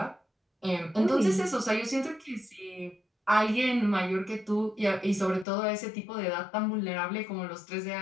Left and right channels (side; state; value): right; drops out; at 5.5 s